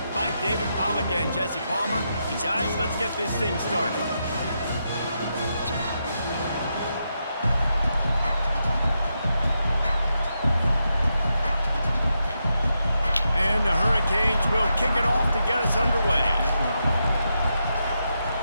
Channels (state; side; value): inverted; both; correlation -0.84